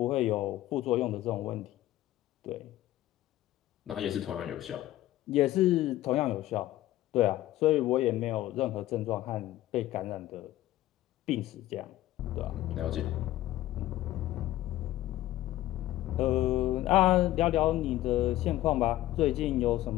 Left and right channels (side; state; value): right; quieter; 15.0 dB